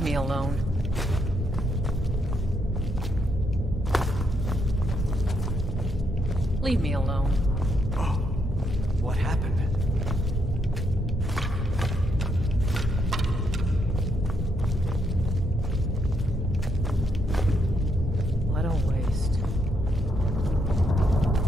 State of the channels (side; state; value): both; normal; correlation 0.76